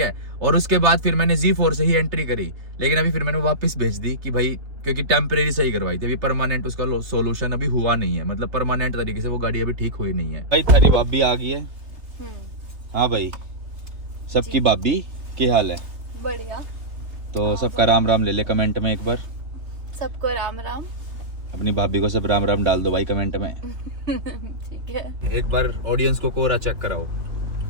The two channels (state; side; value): late; left; 3.4 ms